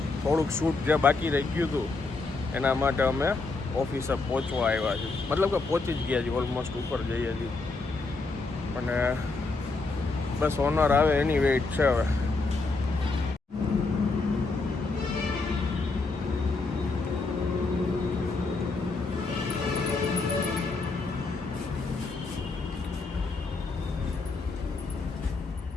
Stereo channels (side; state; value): right; quieter; 3.7 dB